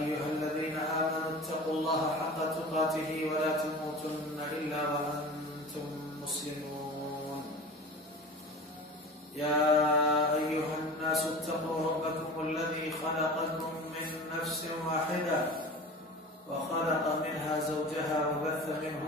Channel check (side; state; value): both; normal; correlation 0.36